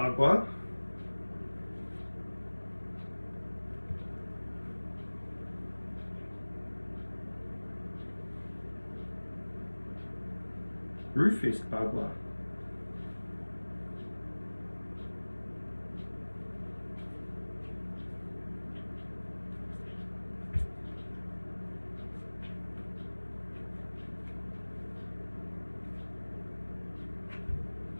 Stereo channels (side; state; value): both; inverted; correlation -1.00